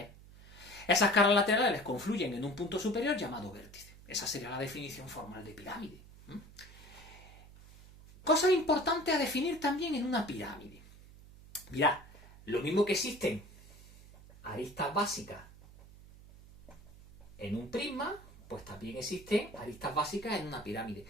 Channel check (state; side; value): noise; right; hum, 20 dB below the sound